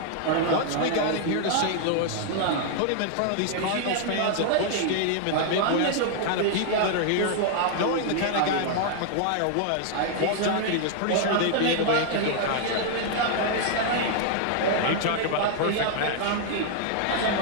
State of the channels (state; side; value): different; both; correlation 0.00